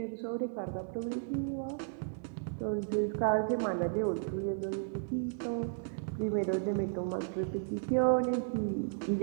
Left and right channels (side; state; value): left; silent; 55 dB below the other